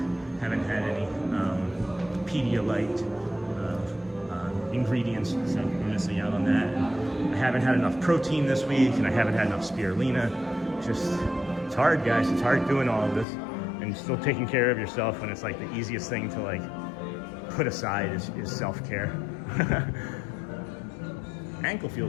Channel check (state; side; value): drops out; right; at 13.2 s